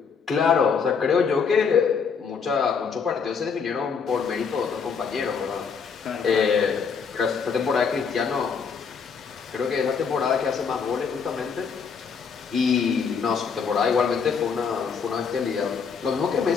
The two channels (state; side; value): quieter; right; 6.0 dB